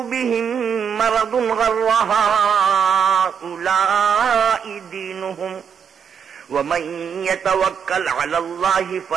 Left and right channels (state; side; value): quieter; left; 7.2 dB